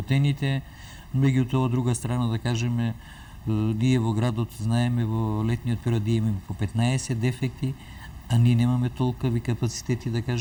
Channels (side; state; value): both; identical; correlation 1.00